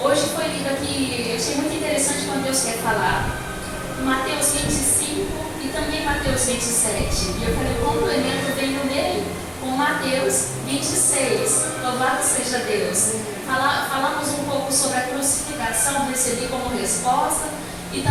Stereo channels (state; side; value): identical; both; correlation 1.00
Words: Hoje foi lido aqui, eu achei muito interessante quando Deus quer falar. Mateus 25 e também Mateus 27. E eu falei, o complemento veio nele com Mateus 26. Louvado seja Deus. Falamos um pouco sobre a crucificação, recebi como resposta. E